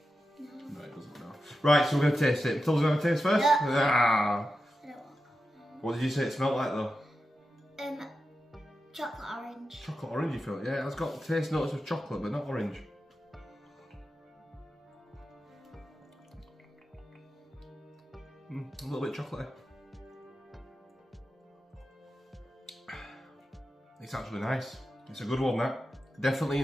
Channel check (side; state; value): both; normal; correlation 0.90